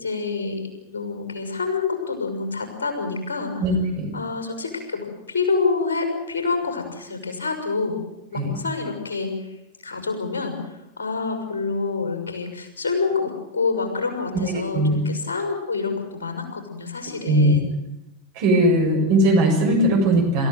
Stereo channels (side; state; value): both; normal; correlation -0.11